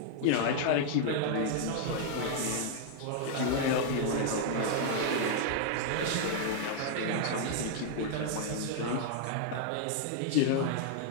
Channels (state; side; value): different; both; correlation 0.00